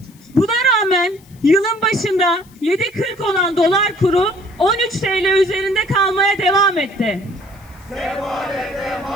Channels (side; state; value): left; noise; hiss, 28 dB below the sound